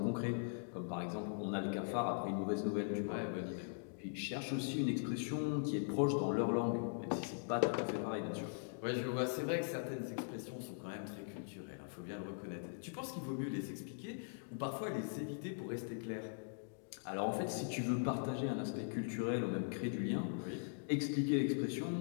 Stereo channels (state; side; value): silent; right; digital silence